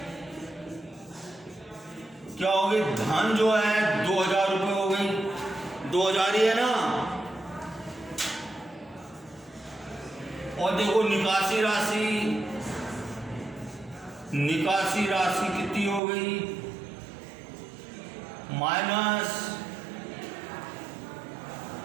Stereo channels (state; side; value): drops out; left; at 16.0 s